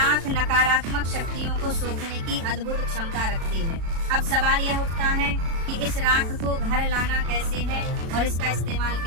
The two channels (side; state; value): left; late; 36 ms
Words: नकारात्मक शक्तियों को सोखने की अद्भुत क्षमता रखती है। अब सवाल यह उठता है कि इस राख को घर लाना कैसे है और इसका इस्तेमाल